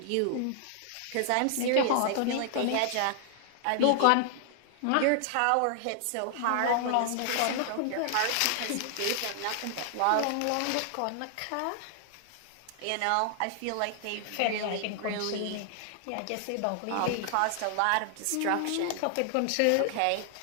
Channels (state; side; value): different; both; correlation 0.00